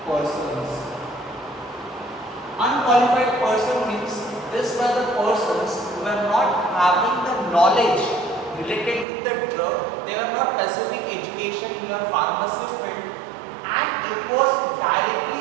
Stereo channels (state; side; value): drops out; left; at 9.1 s